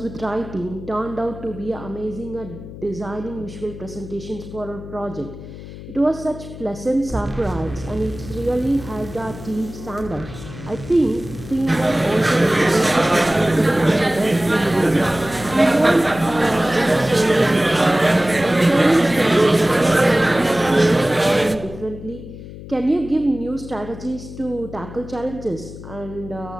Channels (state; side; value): noise; left; hum, 13 dB below the sound